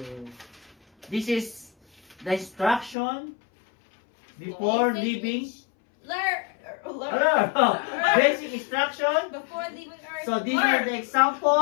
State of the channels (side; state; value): right; drops out; at 3.0 s